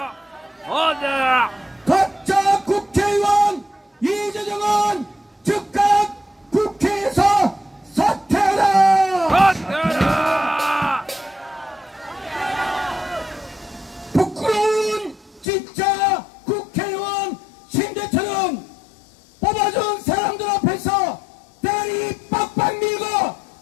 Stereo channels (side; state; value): right; drops out; at 15.5 s